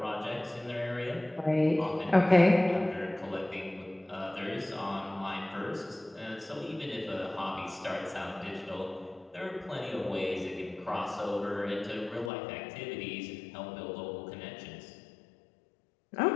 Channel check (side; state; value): right; drops out; at 12.3 s